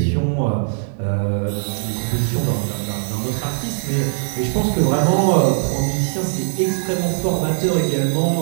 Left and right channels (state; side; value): silent; left; digital silence